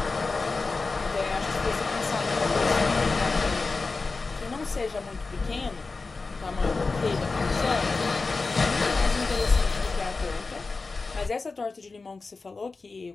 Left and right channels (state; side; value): quieter; right; 4.0 dB